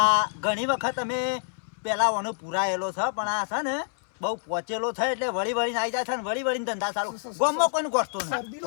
ઘણી વખત અમે પેલા ઓનો પુરાયેલો છે પણ આ છે ને બહુ પહોંચેલો છે એટલે વળી વળીને આવી જાય છે ને વળી વળીને ધંધા ચાલુ ગોમમાં કોઈને ગોઠતો નહીં.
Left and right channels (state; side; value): silent; right; 60 dB below the other